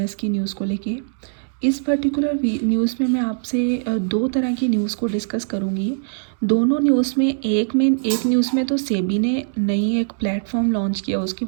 की न्यूज़ को लेके। इस पर्टिकुलर न्यूज़ में मैं आपसे दो तरह की न्यूज़ को डिस्कस करूँगी। दोनों न्यूज़ में एक न्यूज़ में तो सेबी ने नई एक प्लेटफॉर्म लॉन्च किया, उसके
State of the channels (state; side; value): silent; left; digital silence